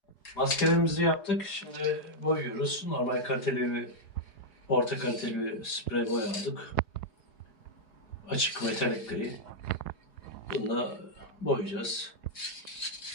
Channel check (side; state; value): right; late; 4.8 ms